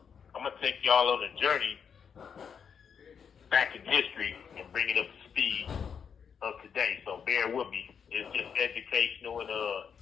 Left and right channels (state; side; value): quieter; right; 7.0 dB